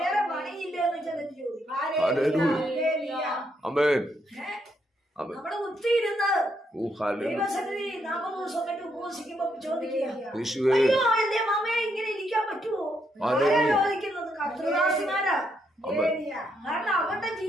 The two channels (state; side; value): normal; both; correlation 0.77